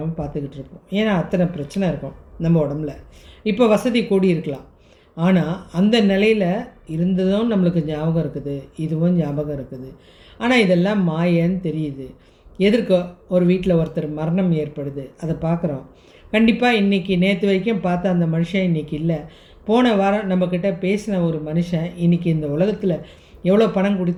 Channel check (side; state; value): both; identical; correlation 1.00